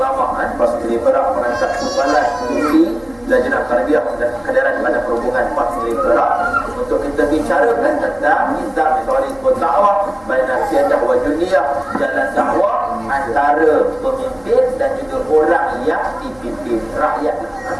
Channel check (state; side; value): noise; left; hum, 28 dB below the sound